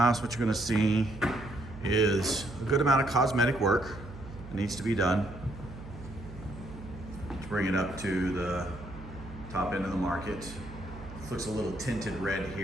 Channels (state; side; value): noise; right; hum, 14 dB below the sound